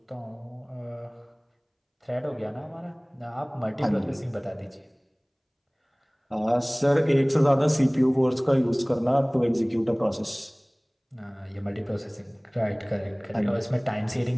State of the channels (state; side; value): identical; both; correlation 1.00